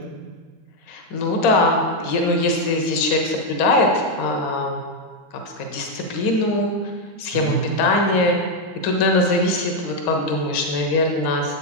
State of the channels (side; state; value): left; late; 4.2 ms